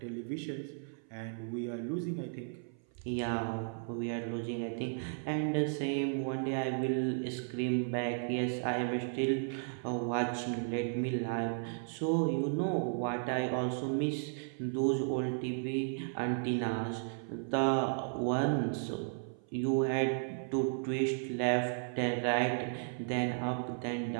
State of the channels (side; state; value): left; silent; 55 dB below the other